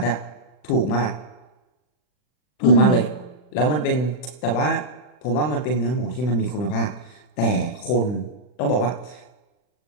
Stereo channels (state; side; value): late; right; 40 ms